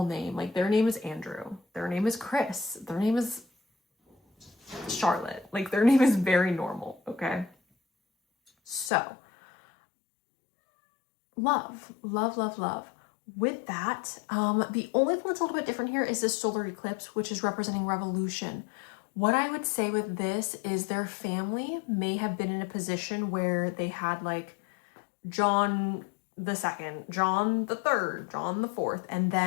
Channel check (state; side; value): drops out; right; at 8.9 s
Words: Like their name is Andrew. Their name is Chris. Their name is Charlotte. Like their name is very normal, okay? So, love. With that, the only thing that's a little bit different here is this solar eclipse, which is representing revolution. What I would say with this is their family may have been in a position where they had like John the second, John the third, John the fourth, and